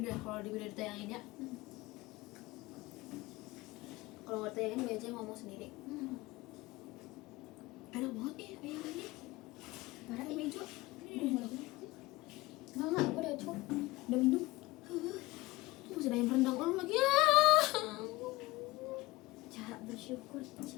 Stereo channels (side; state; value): right; quieter; 20.9 dB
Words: deh kalau di video ditayangin ya. Kalau nggak ditayangin biasanya ngomong sendiri. Enak banget nih ayam ini. Parah Ayam hijau. Enggak, gue udah cukup. Udah minum. Tuh masih ada ayam rendang lu lagi ya. Cara bersyukur,